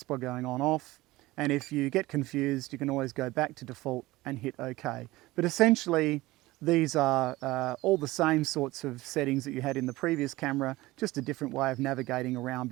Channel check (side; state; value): left; quieter; 19.0 dB